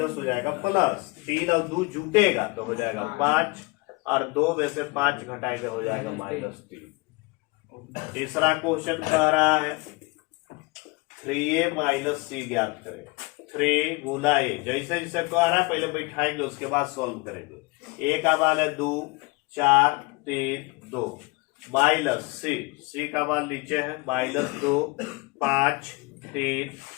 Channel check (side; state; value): right; quieter; 26.1 dB